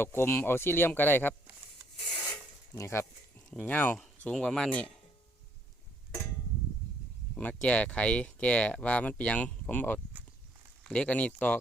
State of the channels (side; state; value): both; normal; correlation 0.68